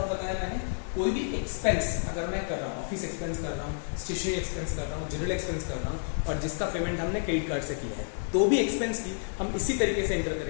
बताया मैंने, कोई भी एक्सपेंस अगर मैं कर रहा हूँ, ऑफिस एक्सपेंस कर रहा हूँ, स्टेशनरी एक्सपेंस कर रहा हूँ, जनरल एक्सपेंस कर रहा हूँ, और जिसका पेमेंट हमने क्रेडिट कार्ड से किया है, तो भी एक्सपेंस की हम इसी तरीके से एंटर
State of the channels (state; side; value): silent; right; digital silence